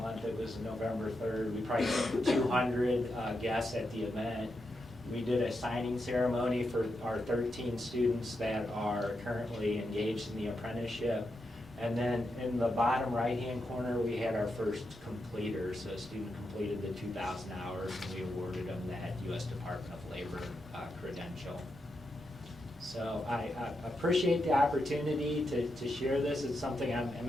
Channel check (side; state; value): both; normal; correlation 0.85